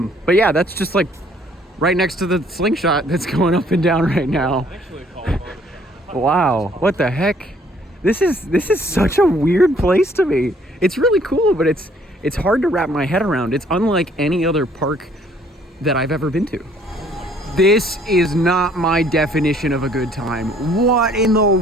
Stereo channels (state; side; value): normal; both; correlation 0.61